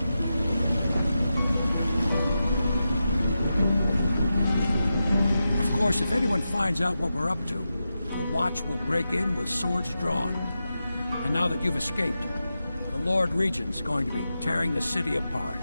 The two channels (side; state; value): both; inverted; correlation -0.90